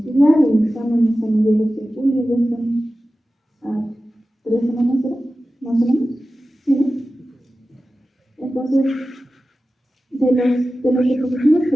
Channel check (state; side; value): normal; both; correlation 0.94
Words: El examen es a mediados de julio, ya están a 3 semanas, ¿verdad? Más o menos, ¿sí? ¿No? Entonces, de los diapositivas